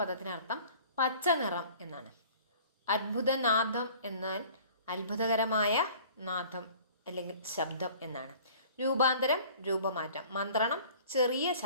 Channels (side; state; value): both; inverted; correlation -0.49